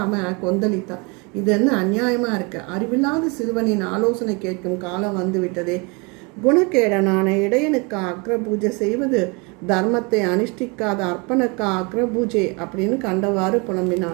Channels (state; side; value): quieter; left; 29.8 dB